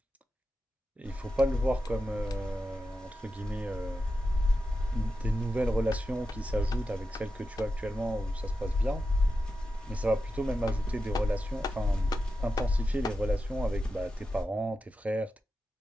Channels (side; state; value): both; normal; correlation 0.90